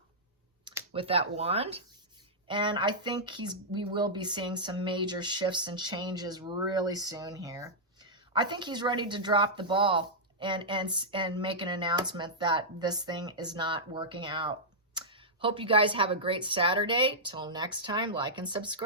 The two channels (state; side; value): normal; both; correlation -0.10